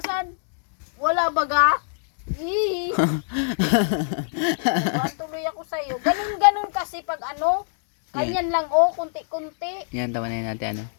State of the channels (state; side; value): silent; right; digital silence